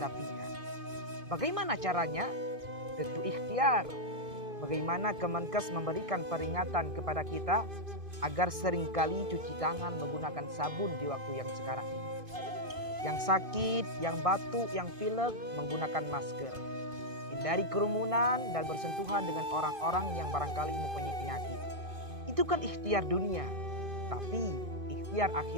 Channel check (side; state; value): left; late; 2.5 ms